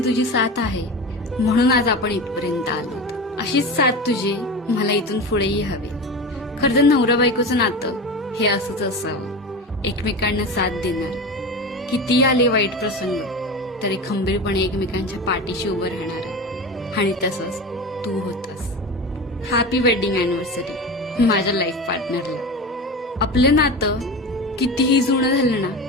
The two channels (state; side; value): normal; both; correlation 0.27